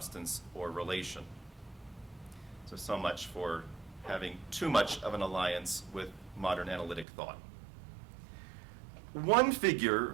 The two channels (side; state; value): left; drops out; at 7.1 s